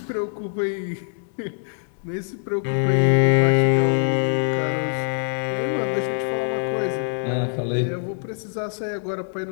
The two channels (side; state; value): right; silent; 61 dB below the other